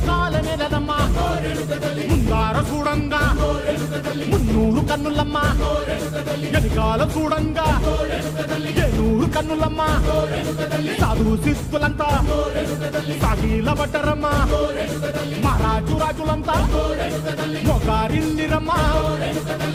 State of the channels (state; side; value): identical; both; correlation 1.00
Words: నెలనమ్మా ముందార చూడంగా మున్నూరు కన్నులమ్మా ఎనకాల చూడంగా ఏనూరు కన్నులమ్మా సాధు శిస్తులంతా సాగిల పడ్డరమ్మా మహారాజు రాజులంతా మొగారిల్లిరమ్మా